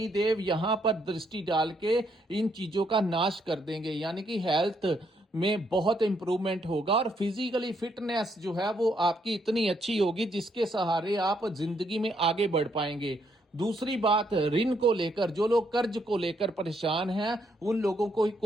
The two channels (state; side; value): normal; both; correlation 0.74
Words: देव यहां पर दृष्टि डाल के इन चीजों का नाश कर देंगे। यानी कि हेल्थ में बहुत इंप्रूवमेंट होगा और फिजिकली फिटनेस जो है वो आपकी इतनी अच्छी होगी जिसके सहारे आप जिंदगी में आगे बढ़ पाएंगे। दूसरी बात, ऋण को लेकर जो लोग कर्ज को लेकर परेशान हैं, उन लोगों को